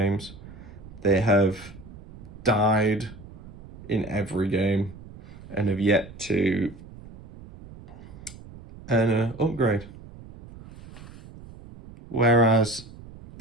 They have died in every game and have yet to earn an upgrade. Whereas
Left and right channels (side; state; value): right; noise; rumble, 17 dB below the sound